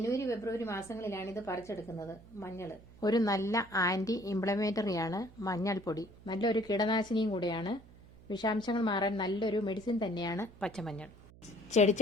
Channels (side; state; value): right; noise; hum, 22 dB below the sound